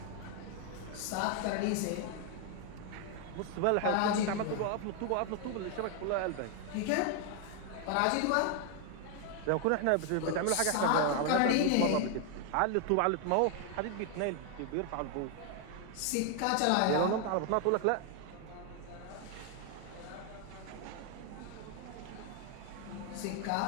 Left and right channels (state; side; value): different; both; correlation 0.01